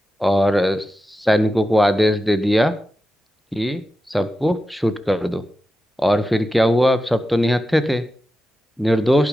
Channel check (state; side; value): normal; both; correlation 0.91